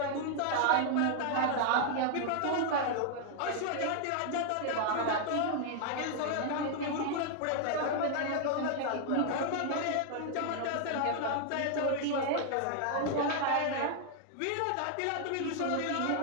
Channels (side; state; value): both; different; correlation 0.00